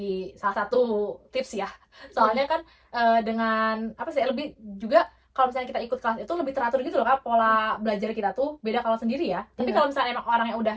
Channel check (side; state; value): both; identical; correlation 1.00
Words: salah satu tips ya, soalnya kan dengan apa sih lebih juga kalau misalnya kita ikut kelas itu lebih teratur gitu loh kak, pola belajar kita tuh beda kalau sendiri ya. Tapi kalau misalnya emang orang yang udah